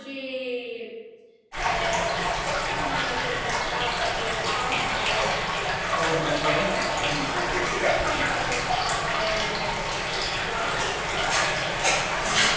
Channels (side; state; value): both; identical; correlation 1.00